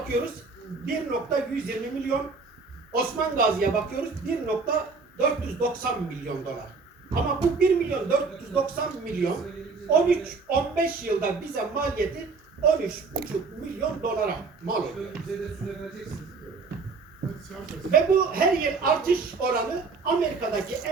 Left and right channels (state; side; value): quieter; left; 4.5 dB